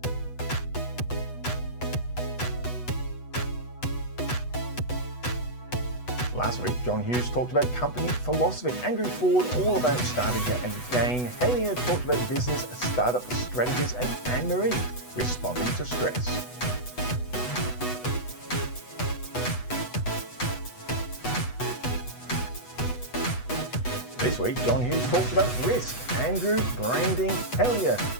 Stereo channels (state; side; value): late; right; 8.1 ms